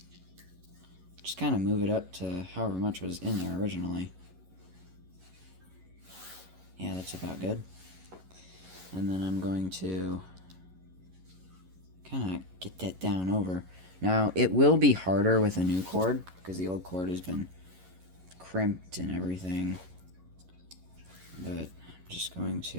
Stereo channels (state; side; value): late; left; 11 ms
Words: just kind of move it up to however much was in there originally. Yeah, that's about good. And then I'm going to kind of get that down over. Now, it will be harder with a new cord, because the old cord has been crimped and everything. But I'm just going